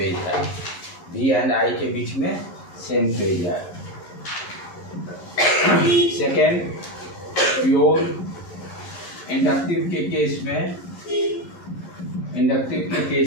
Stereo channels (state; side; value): late; right; 11 ms